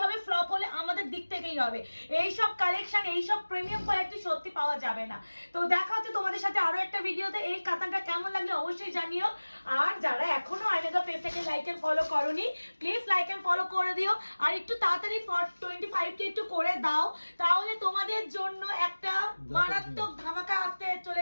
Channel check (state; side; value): inverted; both; correlation -1.00